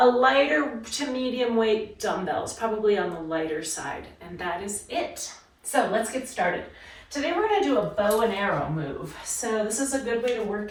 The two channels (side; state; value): both; identical; correlation 1.00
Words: lighter to medium weight dumbbells, probably on the lighter side. And that is it. So let's get started. Today we're going to do a bow and arrow move. So this is a good way to work